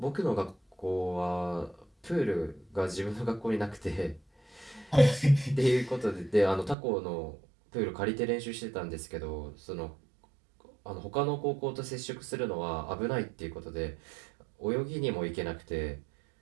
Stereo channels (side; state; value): left; drops out; at 6.8 s